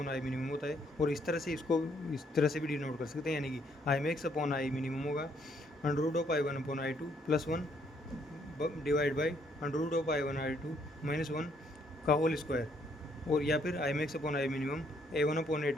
I minimum होता है, और इस तरह से इसको इस तरह से भी डिनोट कर सकते हैं, यानी कि I max upon I minimum होगा under root of I1 upon I2 plus 1 divide by under root of I1 I2 minus 1 का होल स्क्वायर, और या फिर I max upon I minimum A1 upon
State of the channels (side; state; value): both; normal; correlation 0.69